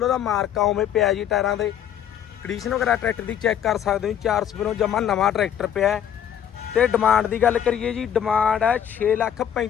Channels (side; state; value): right; quieter; 9.6 dB